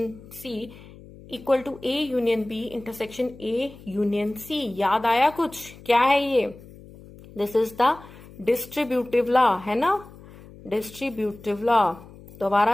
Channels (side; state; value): left; noise; hum, 20 dB below the sound